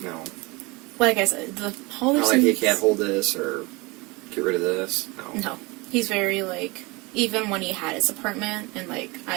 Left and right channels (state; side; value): quieter; left; 25.3 dB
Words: No. Like I said, the Not like, Haldersons... you can't hold this or get rid of this? No. No. He's very, like... Even when he had his apartment, and, like,